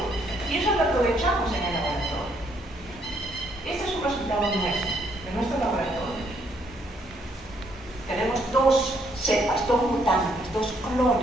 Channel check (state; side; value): normal; both; correlation 0.70